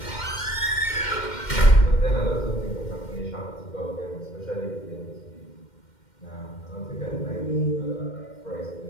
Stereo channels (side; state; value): right; late; 2.1 ms